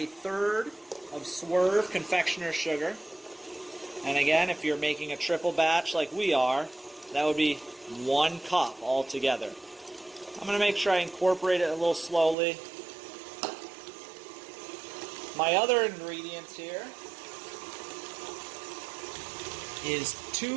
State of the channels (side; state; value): left; drops out; at 12.4 s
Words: of Swerve Confectionate sugar. And again, if you're making a triple batch like we are, that would be 1 cup altogether. I'm going to make sure I incorporate it a little slowly. My other ingredients here is